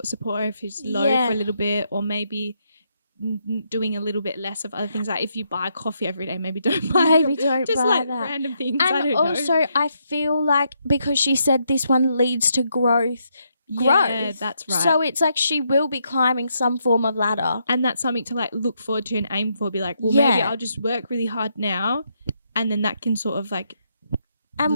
of support her if she's low for a little bit, or maybe doing a little bit less of other things. Like if you buy coffee every day, maybe don't buy just buy like that. Random things. And I don't also know. I feel like because she said this one leads to growth. Yeah, that's right. So it's like she will be climbing some form of ladder. And that's something to like look forward to and aim for. Be like, well, maybe I'll just work really hard now, and then that can sort of like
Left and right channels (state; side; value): inverted; both; correlation -0.78